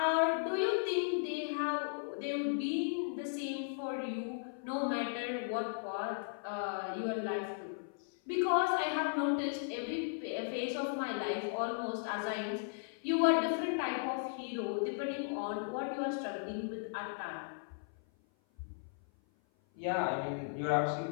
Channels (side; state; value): right; silent; 54 dB below the other